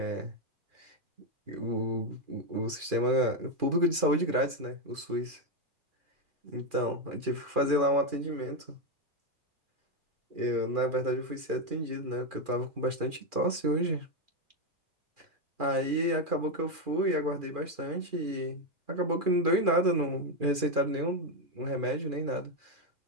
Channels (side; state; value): left; late; 2.4 ms